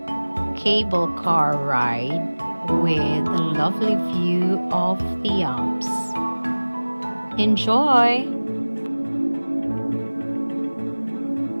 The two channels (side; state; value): both; inverted; correlation -1.00